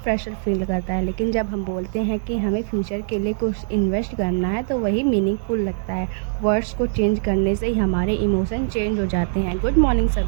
प्रेशर फील करता है, लेकिन जब हम बोलते हैं कि हमें फ्यूचर के लिए कुछ इन्वेस्ट करना है तो वही मीनिंगफुल लगता है। वर्ड्स को चेंज करने से ही हमारे इमोशन चेंज हो जाते हैं। गुड मॉर्निंग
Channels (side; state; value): left; silent; 60 dB below the other